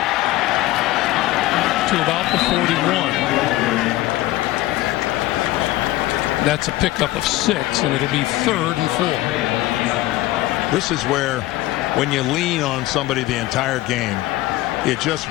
to about the 41. That's a pickup of 6, and it'll be 3rd and 4. This is where, when you lean on somebody the entire game, it just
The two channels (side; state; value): right; quieter; 17.0 dB